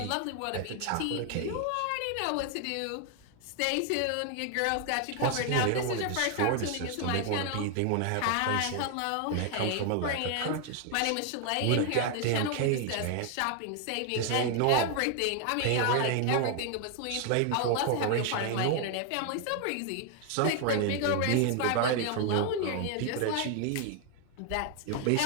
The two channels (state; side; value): different; both; correlation 0.00